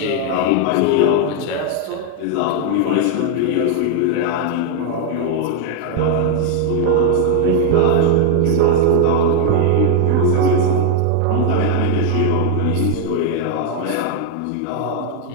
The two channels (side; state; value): both; different; correlation 0.00